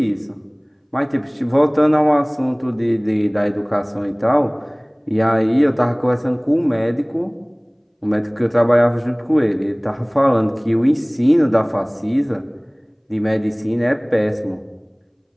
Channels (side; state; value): both; identical; correlation 1.00